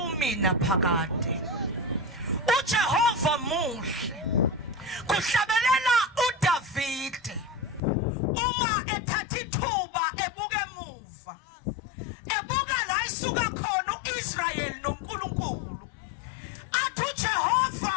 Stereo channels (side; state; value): right; drops out; at 7.8 s